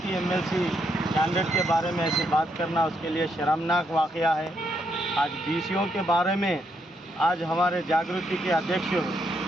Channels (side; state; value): both; normal; correlation 0.77